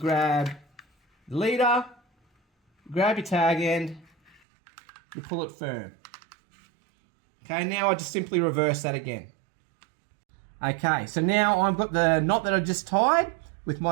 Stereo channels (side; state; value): left; drops out; at 4.4 s